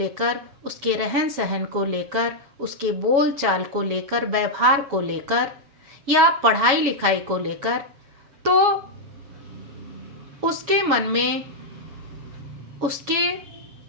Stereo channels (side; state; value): left; late; 7.2 ms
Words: उसके रहन सहन को लेकर, उसके बोल चाल को लेकर, व्यवहार को लेकर या पढ़ाई लिखाई को लेकर, तो उसके मन में उसके